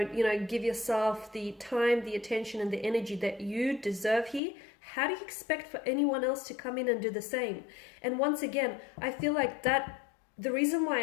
you know, give yourself the time, the attention, and the energy that you deserve here, how do you expect for anyone else to come in and do the same? And once again, I feel like that, the reason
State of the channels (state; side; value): drops out; right; at 4.4 s